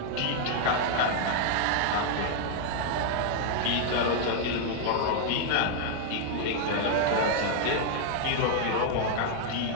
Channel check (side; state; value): both; different; correlation 0.00